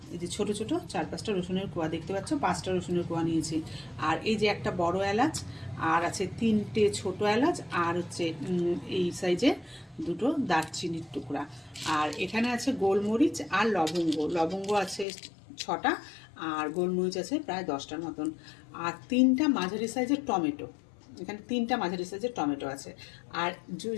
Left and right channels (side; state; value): right; drops out; at 15.1 s